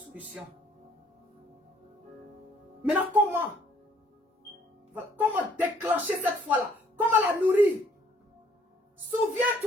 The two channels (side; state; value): both; normal; correlation 0.62